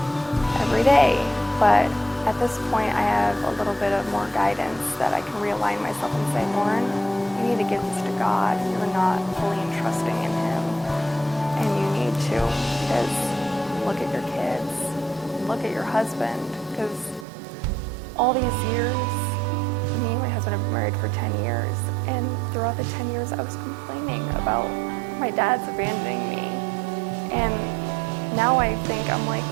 every day. But at this point, I have a little bit of more guidance that I can realign myself and say, Lauren, you need to give this to God. You're not fully entrusting in him, and you need to, because look at your kids, look at your husband, because all these years, me and my husband have been married for 10 years, and throughout the 10 years, I was complaining about my dad's abandoning me. And now I'm like,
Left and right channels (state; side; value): drops out; left; at 17.2 s